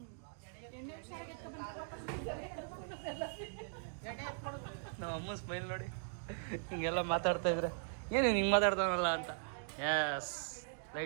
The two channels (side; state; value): left; silent; digital silence